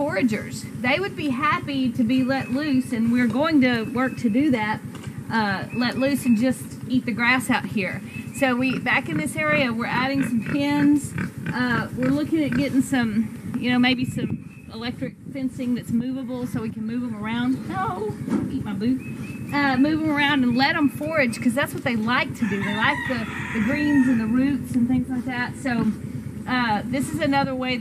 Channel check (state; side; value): identical; both; correlation 1.00